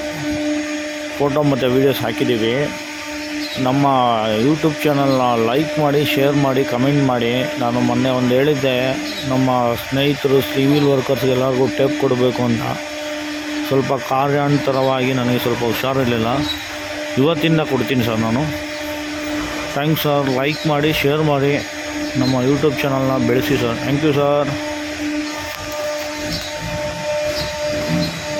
ಫೋಟೋ ಮತ್ತು ವೀಡಿಯೋಸ್ ಹಾಕಿದ್ದೀವಿ. ನಮ್ಮ ಯೂಟ್ಯೂಬ್ ಚಾನಲ್ನ ಲೈಕ್ ಮಾಡಿ, ಶೇರ್ ಮಾಡಿ, ಕಮೆಂಟ್ ಮಾಡಿ. ನಾನು ಮೊನ್ನೆ ಒಂದು ಹೇಳಿದ್ದೆ, ನಮ್ಮ ಸ್ನೇಹಿತರು ಸಿವಿಲ್ ವರ್ಕರ್ಸ್ಗೆಲ್ಲರಿಗೂ ಟೇಪ್ ಕೊಡಬೇಕು ಅಂತ. ಸ್ವಲ್ಪ ಕಾರ್ಯಾಂತರವಾಗಿ ನನಗೆ ಸ್ವಲ್ಪ ಹುಷಾರಿರಲಿಲ್ಲ. ಇವತ್ತಿಂದ ಕೊಡ್ತೀನಿ ಸರ್ ನಾನು. Thanks sir. ಲೈಕ್ ಮಾಡಿ, ಶೇರ್ ಮಾಡಿ, ನಮ್ಮ ಯೂಟ್ಯೂಬ್ ಚಾನಲ್ನ ಬೆಳೆಸಿ ಸರ್. Thank you sir.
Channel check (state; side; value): identical; both; correlation 1.00